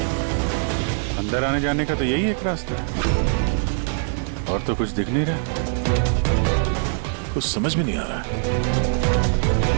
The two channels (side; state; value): left; silent; digital silence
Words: अंदर आने जाने का तो यही एक रास्ता है, और तो कुछ दिख नहीं रहा। कुछ समझ में नहीं आ रहा।